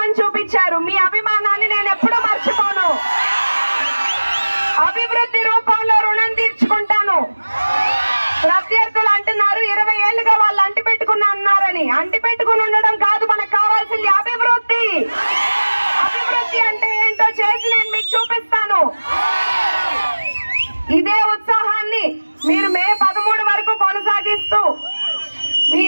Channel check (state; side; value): inverted; both; correlation -1.00